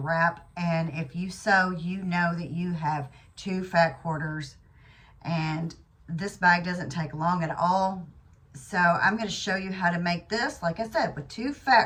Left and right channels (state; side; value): identical; both; correlation 1.00